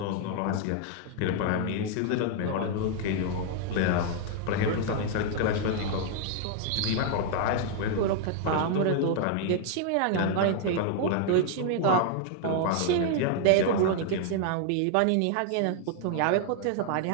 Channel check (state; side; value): different; both; correlation 0.00